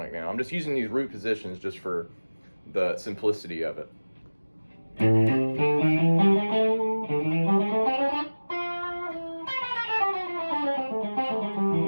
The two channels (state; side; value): inverted; both; correlation -1.00